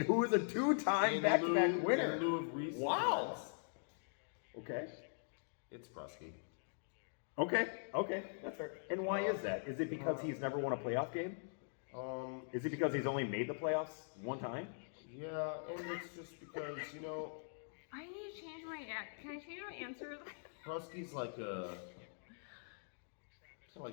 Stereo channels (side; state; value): right; silent; digital silence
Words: who is a 2-time in back-to-back lieu- winner. In lieu of recent Wow. events, Okay. it's Prusky. Okay, that's fair. And why is that? Is it because he's never won a playoff game? Is it because he's only made the playoffs one time? Yeah, and it's just because, you know, I need to change my Can I change my answer? Prusky's like a